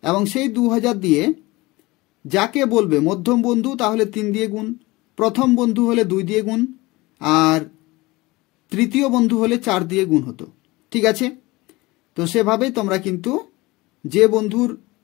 এবং সেই 2,000 দিয়ে যাকে বলবে মধ্যম বন্ধু তাহলে 3 দিয়ে গুণ, প্রথম বন্ধু হলে 2 দিয়ে গুণ, আর তৃতীয় বন্ধু হলে 4 দিয়ে গুণ হতো, ঠিক আছে? তো সেভাবেই তোমরা কিন্তু যে বন্ধুর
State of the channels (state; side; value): quieter; right; 21.5 dB